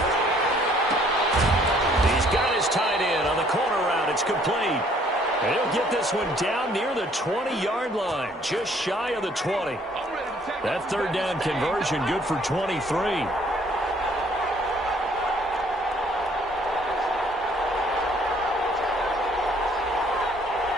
He's got his tight end on the corner route. It's complete. And he'll get this one down near the 20-yard line, just shy of the 20. That 3rd down conversion good for 23.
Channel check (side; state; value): both; normal; correlation 0.61